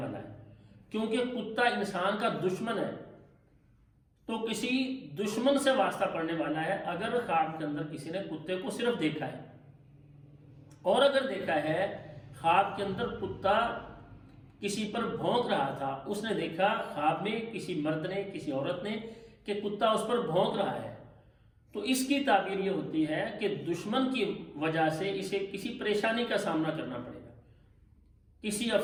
ہے، کیونکہ کتا انسان کا دشمن ہے، تو کسی دشمن سے واسطہ پڑنے والا ہے اگر خواب کے اندر کسی نے کتے کو صرف دیکھا ہے۔ اور اگر دیکھا ہے خواب کے اندر کتا کسی پر بھونک رہا تھا، اس نے دیکھا خواب میں کسی مرد نے، کسی عورت نے کہ کتا اس پر بھونک رہا ہے، تو اس کی تعبیر یہ ہوتی ہے کہ دشمن کی وجہ سے اسے کسی پریشانی کا سامنا کرنا پڑے گا، کسی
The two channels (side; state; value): both; identical; correlation 1.00